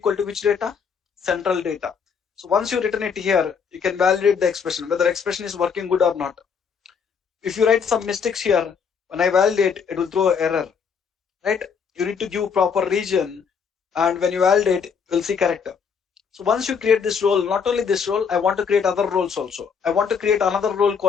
to which data? Central data. So once you return it here, you can validate the expression, whether expression is working good or not. If you write some mistakes here, when I validate, it will throw error, right? You need to give proper region, and when you validate, you'll see correct. So once you create this role, not only this role, I want to create other roles also. I want to create another role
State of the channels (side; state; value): right; quieter; 6.3 dB